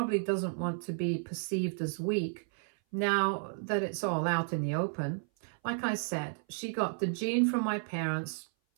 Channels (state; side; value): silent; left; 56 dB below the other